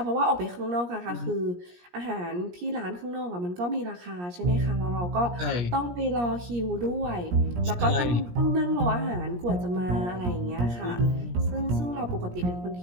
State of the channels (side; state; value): left; late; 17 ms